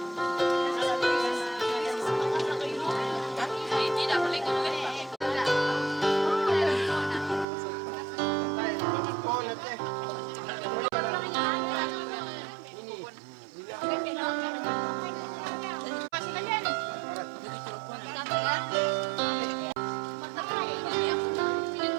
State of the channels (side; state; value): left; drops out; at 7.5 s